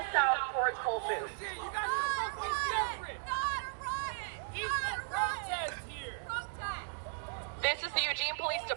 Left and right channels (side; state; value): left; silent; digital silence